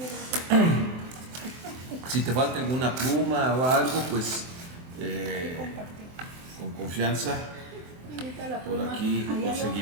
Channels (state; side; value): late; left; 24 ms